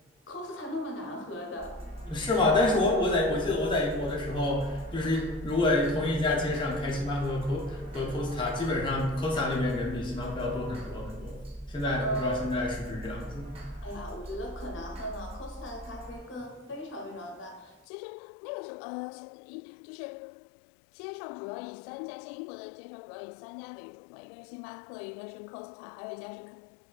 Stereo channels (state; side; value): drops out; right; at 17.8 s